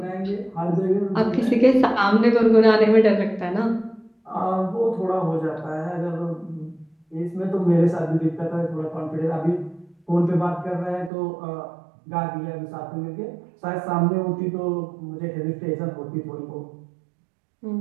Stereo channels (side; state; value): left; drops out; at 11.1 s